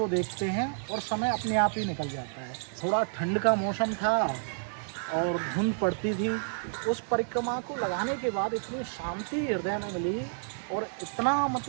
देखते हैं और समय अपने आप ही निकल जाता है। थोड़ा ठंड का मौसम था और धुंध पड़ती थी। उस परिक्रमा को लगाने के बाद इतनी शांति हृदय में मिली और इतना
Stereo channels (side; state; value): left; silent; digital silence